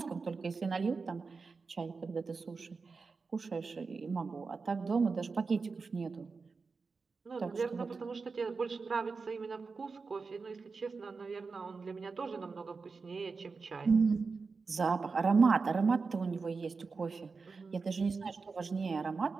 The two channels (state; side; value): quieter; left; 4.6 dB